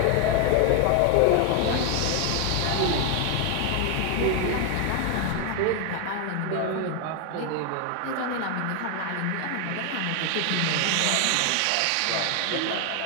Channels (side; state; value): both; different; correlation 0.00